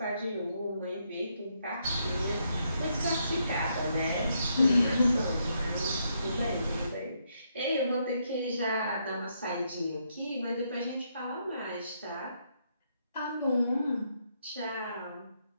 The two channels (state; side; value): inverted; both; correlation -0.77